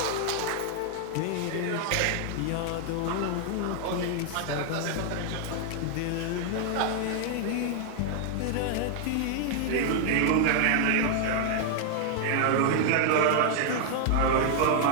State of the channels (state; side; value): different; both; correlation 0.00